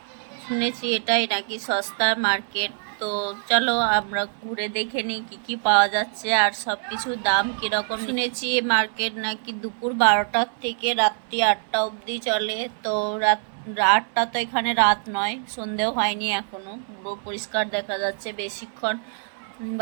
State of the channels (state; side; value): silent; left; 62 dB below the other